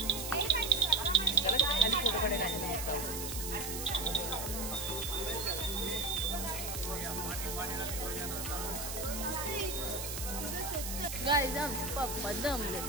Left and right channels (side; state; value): right; noise; hiss, 5 dB below the sound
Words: गाईज आमचे पप्पा दमले.